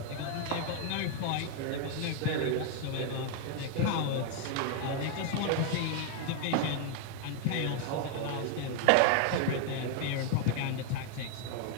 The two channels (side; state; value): both; different; correlation 0.00